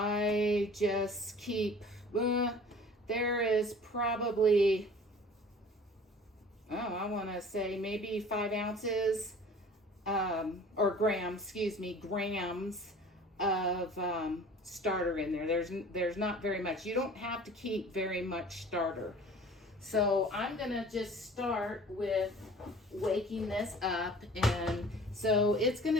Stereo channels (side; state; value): both; normal; correlation 0.46